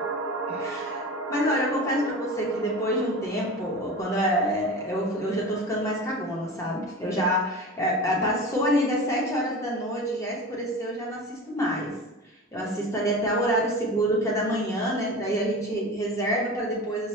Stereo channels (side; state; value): both; normal; correlation 0.31